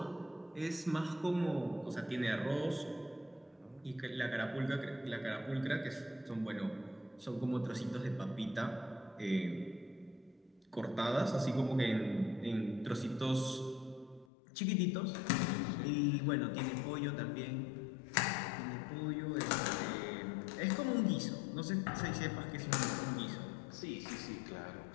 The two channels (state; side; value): drops out; right; at 14.2 s